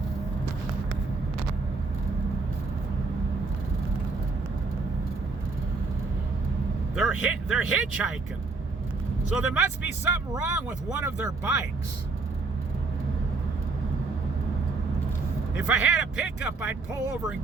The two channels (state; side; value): quieter; left; 3.9 dB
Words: They're hitchhiking. So there must be something wrong with one of their bikes. If I had a pickup, I'd pull over and